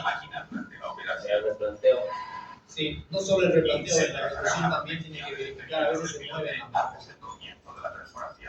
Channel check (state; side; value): identical; both; correlation 1.00